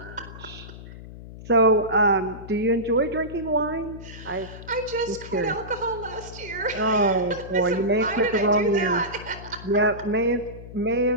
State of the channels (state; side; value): noise; left; hum, 14 dB below the sound